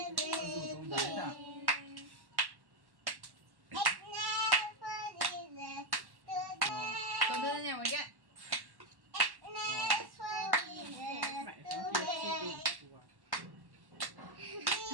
Rủ tông giấy à? Con đưa nhà ngoài kia.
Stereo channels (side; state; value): left; late; 1.1 ms